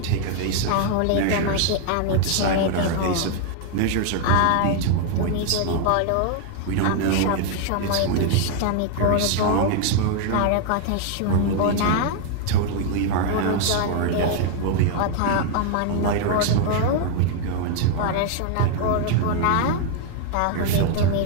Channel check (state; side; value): different; both; correlation 0.00